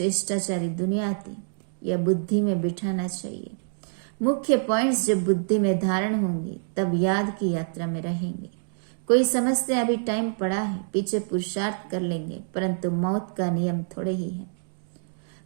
दुनिया थी। यह बुद्धि में बिठाना चाहिए। मुख्य पॉइंट्स जब बुद्धि में धारण होंगे तब याद की यात्रा में रहेंगे। कोई समझते अभी टाइम पड़ा है, पीछे पुरुषार्थ कर लेंगे, परंतु मौत का नियम थोड़े ही है।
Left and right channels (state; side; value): silent; left; digital silence